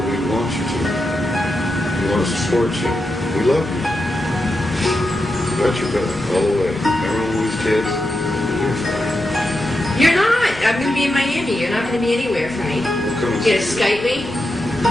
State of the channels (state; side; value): normal; both; correlation 0.87